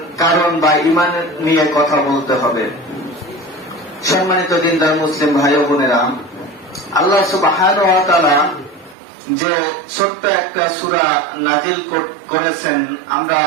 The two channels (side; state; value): left; drops out; at 9.0 s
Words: কারণ বা ঈমান নিয়ে কথা বলতে হবে। সম্মানিত দিনদার মুসলিম ভাই ও বোনেরা, আল্লাহ সুবহানাহু ওয়া তাআলা যে ছোট্ট একটা সূরা নাজিল করেছেন, আমরা